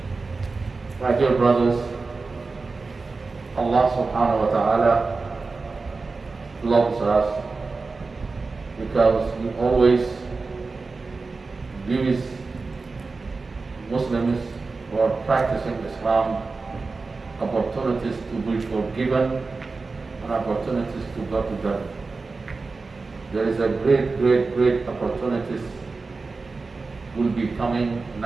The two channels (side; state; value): left; quieter; 4.0 dB